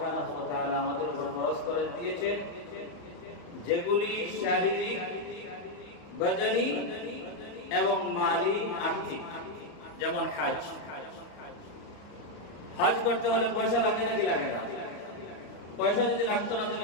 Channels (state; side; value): late; right; 34 ms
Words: ওয়া তাআলা আমাদের উপর ফরজ করে দিয়েছেন, যেগুলি শারীরিক, বদনি এবং মালি, আর্থিক, যেমন হজ। হজ করতে হলে পয়সা লাগে নাকি লাগে না? পয়সা যদি লাগতো না